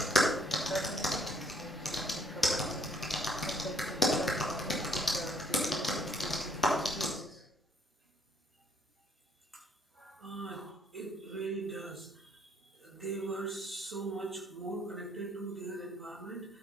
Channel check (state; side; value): normal; both; correlation 0.65